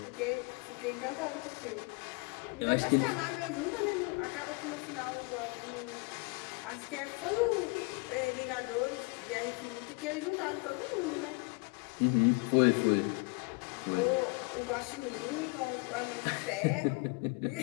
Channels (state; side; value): quieter; right; 30.4 dB